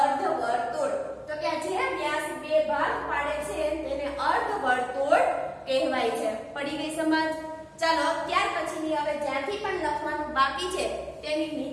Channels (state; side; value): identical; both; correlation 1.00